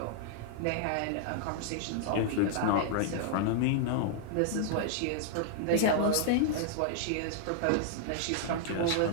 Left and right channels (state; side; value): different; both; correlation -0.01